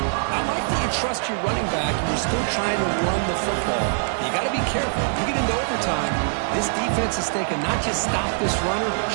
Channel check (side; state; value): left; silent; digital silence